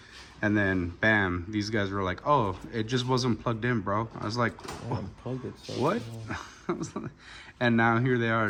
And then bam, these guys were like, oh, it just wasn't plugged in, bro. I was like, what? And now here they are,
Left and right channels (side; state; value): both; identical; correlation 1.00